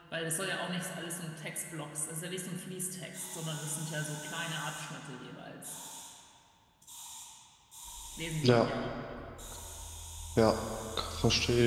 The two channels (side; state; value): both; identical; correlation 1.00